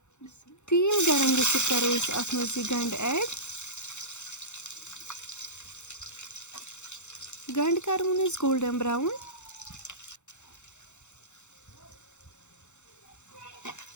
تیٖل گرم گٔژھِتھ کرو أسۍ اتھ منٛز یہِ گنٛڈٕ ایڈ گنٛڈٕ کرون أسۍ گولڈن براوُن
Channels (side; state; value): right; late; 0.83 ms